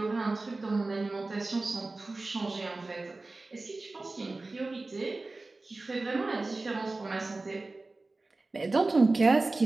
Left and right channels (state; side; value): quieter; left; 3.3 dB